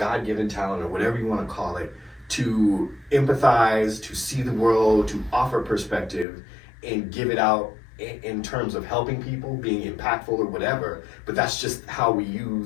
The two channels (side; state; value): right; drops out; at 6.2 s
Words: talent or whatever you want to call it to empathize, to see the world, to offer perspective and give it out in terms of helping people, being impactful or whatever, but that's just how we